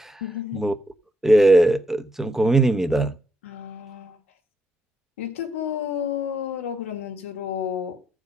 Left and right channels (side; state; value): both; normal; correlation 0.78